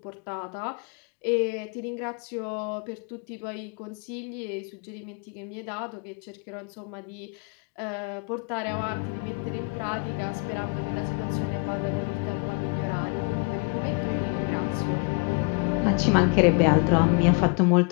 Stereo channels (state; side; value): quieter; right; 31.7 dB